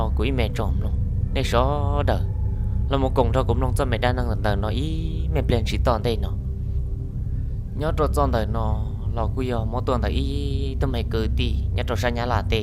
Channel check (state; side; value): identical; both; correlation 1.00